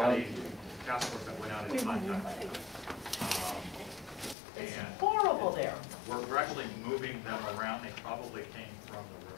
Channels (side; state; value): right; drops out; at 4.4 s